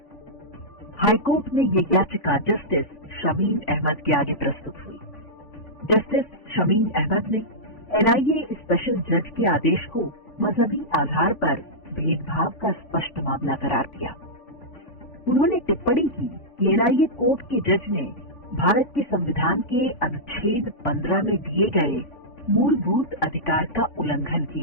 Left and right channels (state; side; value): late; right; 3.5 ms